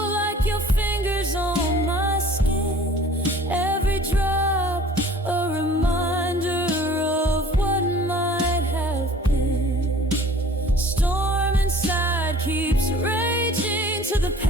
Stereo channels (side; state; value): both; normal; correlation 0.49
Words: like your fingers on my skin, every drop a reminder of what might have been. Storm inside keeps raging to the